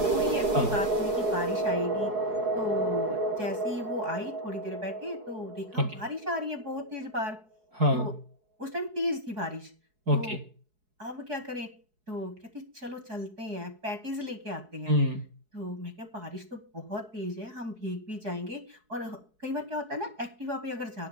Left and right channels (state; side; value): late; left; 4.7 ms